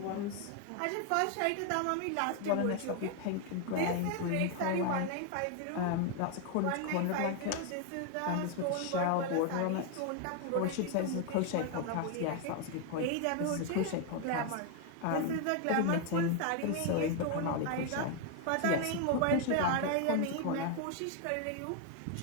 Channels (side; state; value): both; different; correlation 0.01